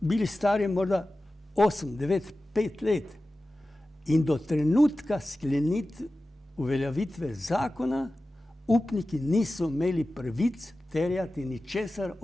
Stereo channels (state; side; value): normal; both; correlation 0.95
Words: stari morda 8, 9, 5 let. In do trenutka uveljavitve zakona upniki niso imeli pravic terjati ničesar